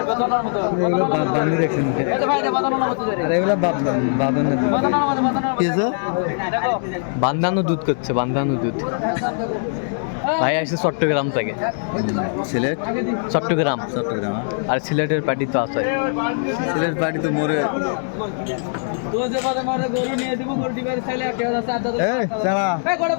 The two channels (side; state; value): right; silent; digital silence